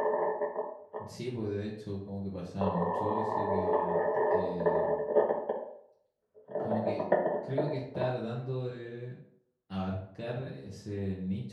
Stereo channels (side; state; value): both; identical; correlation 1.00